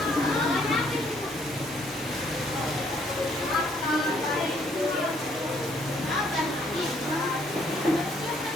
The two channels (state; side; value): normal; both; correlation 0.66